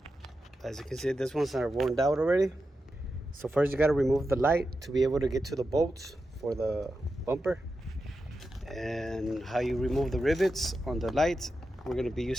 As you can see, this ones are worn out already. So first you gotta remove the light to be able to get to the bolts for the bumper. And how you remove the rivets on the lights, we're gonna be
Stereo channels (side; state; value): both; normal; correlation 0.89